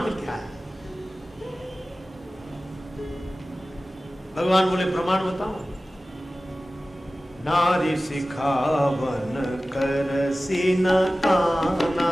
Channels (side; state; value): both; normal; correlation 0.96